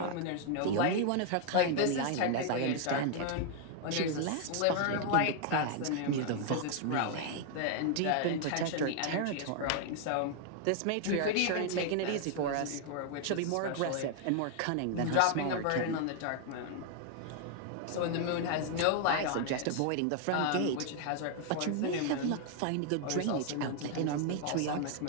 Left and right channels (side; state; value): both; different; correlation 0.00